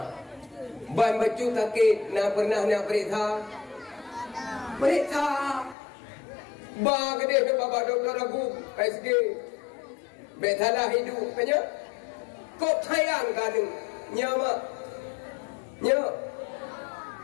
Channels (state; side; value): drops out; right; at 5.8 s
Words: ban baju takit nak pernah nak periksa. Periksa. Ba gede bapa doktor aku PSG. Betalah hidup punya. Kau sayang kan nyama. Nya.